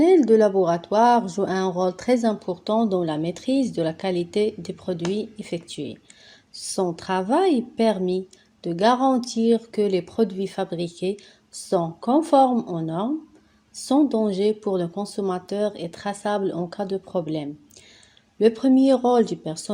de laboratoire joue un rôle très important dans la maîtrise de la qualité des produits effectués. Son travail permet de garantir que les produits fabriqués sont conformes aux normes, sans danger pour le consommateur et traçables en cas de problème. Le premier rôle du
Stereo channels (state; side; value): identical; both; correlation 1.00